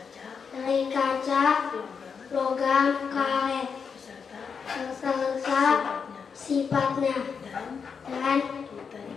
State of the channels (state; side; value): quieter; right; 6.1 dB